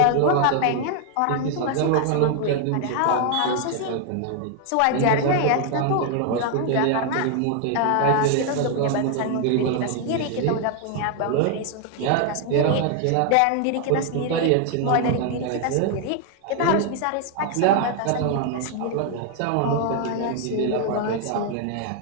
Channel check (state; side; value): different; both; correlation 0.00